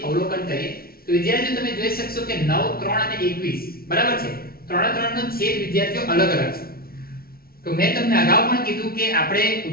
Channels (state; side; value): late; right; 0.44 ms